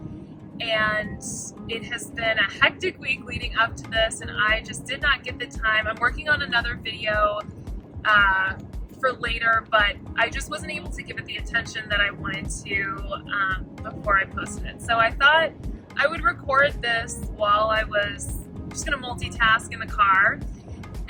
And it has been a hectic week leading up to this, and I just did not get the time. I'm working on another video for later, but I just wasn't able to give it the attention that I wanted to before I posted it. So I thought I would record this while I was just gonna multitask in the car.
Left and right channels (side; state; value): both; identical; correlation 1.00